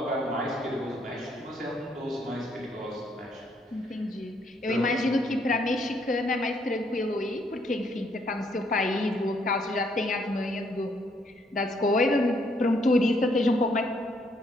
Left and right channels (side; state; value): both; normal; correlation 0.71